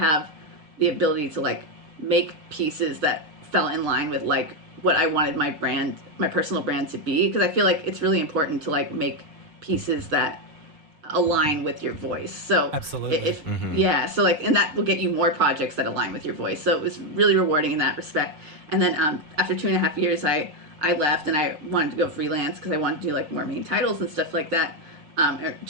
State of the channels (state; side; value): late; left; 6.5 ms